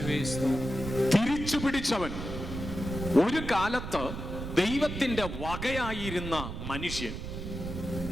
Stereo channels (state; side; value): noise; right; rumble, 7 dB below the sound